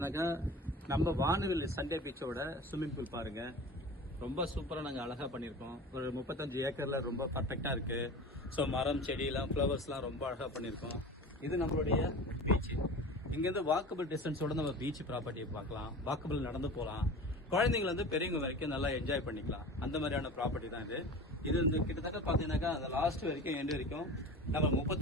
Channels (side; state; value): both; normal; correlation 0.35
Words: நம்ம வானவில் சண்டே பீச்சோட ஸ்விம்மிங் பூல் பாருங்க. ரொம்ப சூப்பராக நாங்கள் அழகாக பண்ணியிருக்கோம். ஒரு 35 ஏக்கர்ல ரொம்ப பர்ஃபெக்டாக இருக்கு. ஸோ மரம் செடியெல்லாம் ஃப்ளவர்ஸ்லாம் ரொம்ப அழகாக பண்ணியிருக்கோம். இது நம்மளுடைய பீச். இங்கேருந்து வாக்கபிள் டிஸ்டன்ஸோட நம்ம பீச் ப்ராப்பர்ட்டியை பார்க்கலாம். வாக்கபிள் நடந்து போகலாம். குழந்தைங்க வந்து பெரியவங்க வரைக்கும் நல்லா என்ஜாய் பண்ணிக்கலாம். அந்த மாதிரியான ப்ராப்பர்ட்டி தான் இது. இது வந்து கிட்டத்தட்ட பார்த்தீங்கன்னாக்கா அந்த லாஸ்ட் வரைக்கும் எண்டு வரைக்கும் நம்ம